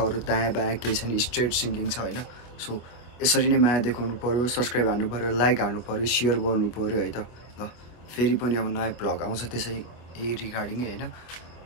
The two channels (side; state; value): right; late; 24 ms